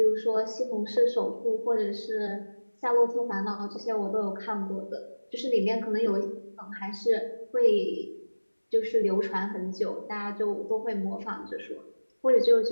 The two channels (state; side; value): inverted; both; correlation -1.00